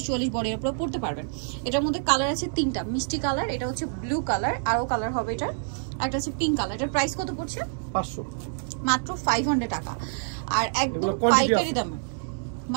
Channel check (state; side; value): silent; left; 60 dB below the other